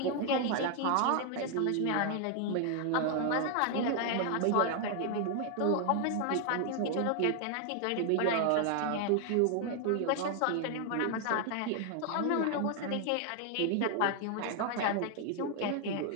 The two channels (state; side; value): different; both; correlation 0.00